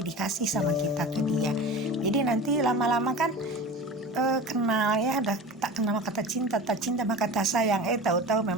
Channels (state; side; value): normal; both; correlation 0.34